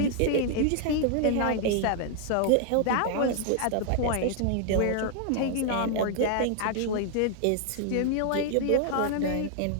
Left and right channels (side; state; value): both; different; correlation 0.00